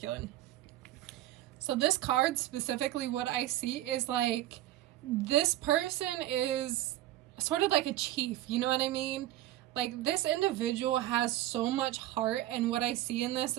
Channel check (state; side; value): quieter; left; 14.5 dB